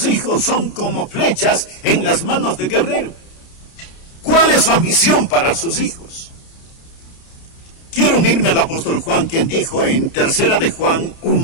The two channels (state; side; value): late; right; 30 ms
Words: hijos son como flechas en las manos del guerrero. ¿Cuál es su ambición para sus hijos? Quiero unirme al apóstol Juan, quien dijo en 3 de Juan